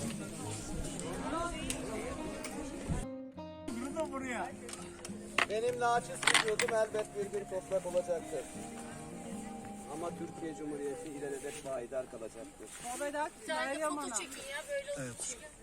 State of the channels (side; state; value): both; identical; correlation 1.00